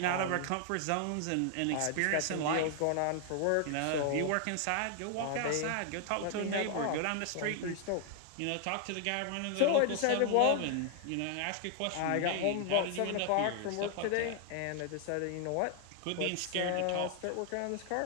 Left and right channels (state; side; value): different; both; correlation 0.00